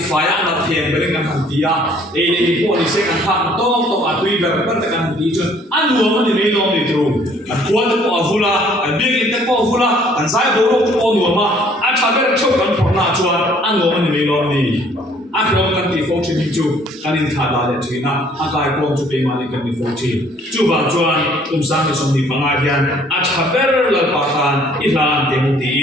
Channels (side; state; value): both; normal; correlation 0.59